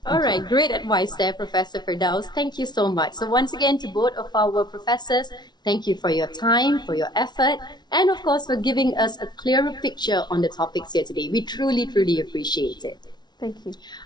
All right, great advice there, Professor Firdaus. Thank you so much. So once again, to both of our professors, thank you for your time, for your effort, and of course for giving us a clearer picture on the topics here today. We truly, truly appreciate it. Thank you.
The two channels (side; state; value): right; late; 0.20 ms